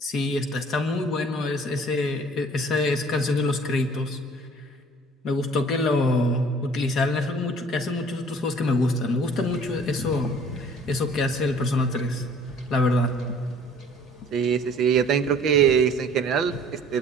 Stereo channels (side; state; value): both; normal; correlation 0.52